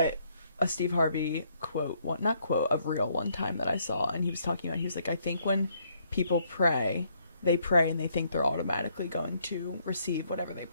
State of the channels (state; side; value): inverted; both; correlation -0.70